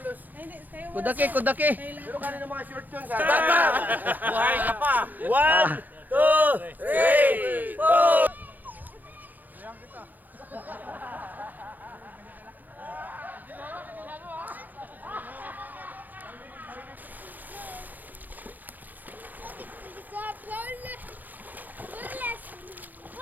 Kudaki. Pero kanina mga short yun. Buhay ka pa. 1, 2, 3, 4.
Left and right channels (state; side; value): late; left; 0.084 ms